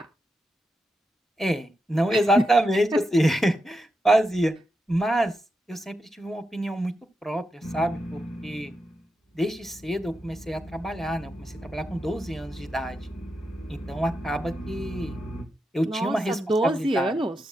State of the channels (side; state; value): both; normal; correlation 0.86